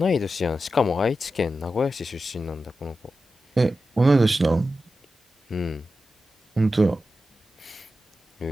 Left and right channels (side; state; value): both; normal; correlation 0.91